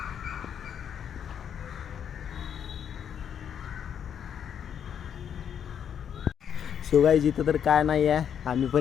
सो गाईज इथं तर काय नाही आहे, आम्ही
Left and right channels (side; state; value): right; quieter; 8.4 dB